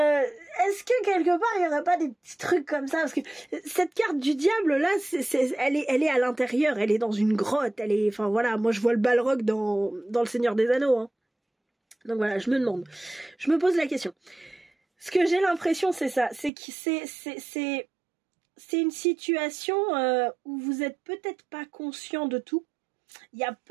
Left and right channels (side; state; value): left; drops out; at 16.5 s